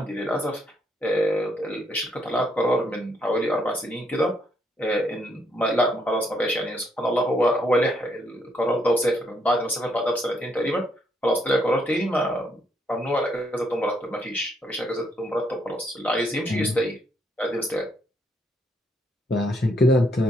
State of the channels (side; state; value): both; normal; correlation 0.73